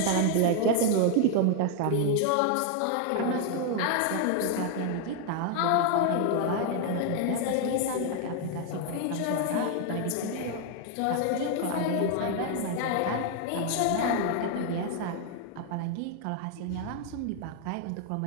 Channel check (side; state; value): both; different; correlation 0.00